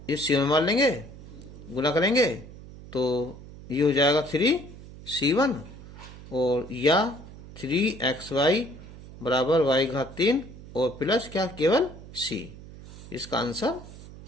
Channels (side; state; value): right; noise; hum, 16 dB below the sound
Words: इस c1 मान लेंगे, गुना करेंगे तो ये हो जाएगा 3c1 और या 3xy बराबर y घात 3 और प्लस क्या केवल c। इसका आंसर